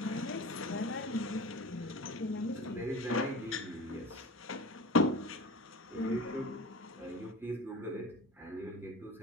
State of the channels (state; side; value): normal; both; correlation 0.34